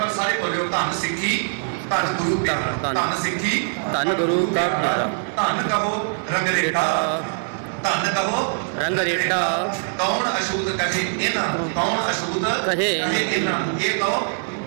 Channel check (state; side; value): silent; left; digital silence